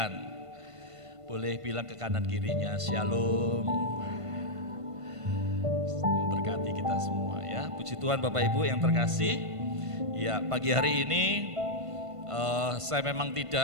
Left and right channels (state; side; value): late; left; 1.5 ms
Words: Boleh bilang ke kanan kirinya shalom. Berkati kita semua ya. Puji Tuhan Bapak Ibu yang terkasih. Ya, pagi hari ini saya memang